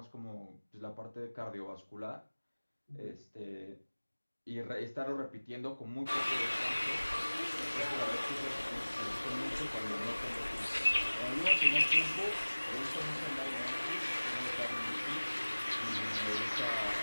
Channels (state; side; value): inverted; both; correlation -1.00